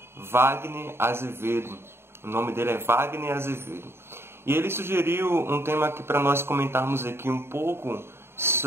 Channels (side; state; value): left; late; 0.12 ms